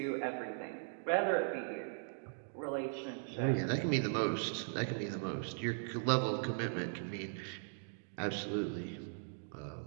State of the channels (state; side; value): silent; left; digital silence